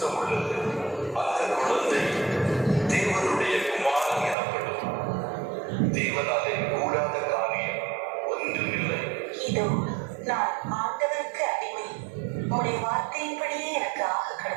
உள்ளது. அந்த குழந்தை தேவனுடைய குமாரன் எனப்படும். தேவனாலே கூடாத காரியம் ஒன்றுமில்லை. இதோ நான் ஆண்டவருக்கு அடிமை. உடைய வார்த்தையின்படியே எனக்கு ஆக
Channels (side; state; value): left; drops out; at 4.4 s